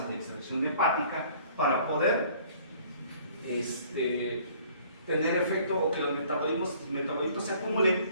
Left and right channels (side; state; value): both; inverted; correlation -0.55